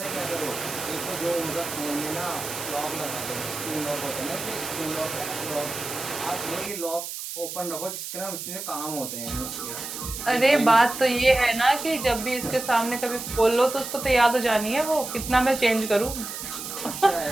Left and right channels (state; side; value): noise; right; hiss, 7 dB below the sound